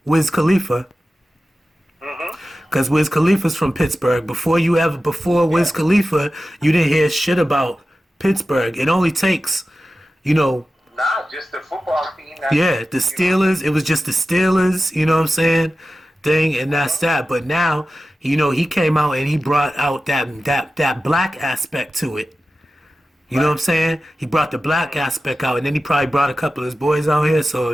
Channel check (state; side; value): normal; both; correlation 0.94